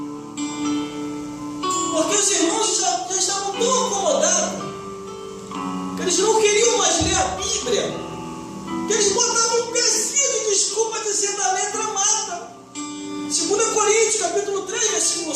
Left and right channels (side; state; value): both; identical; correlation 1.00